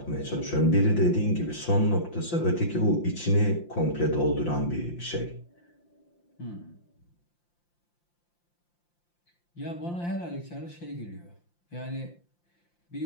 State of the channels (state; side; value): late; right; 5.8 ms